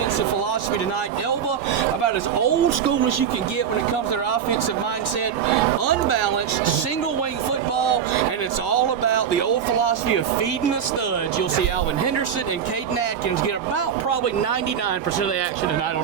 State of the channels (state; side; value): quieter; left; 8.1 dB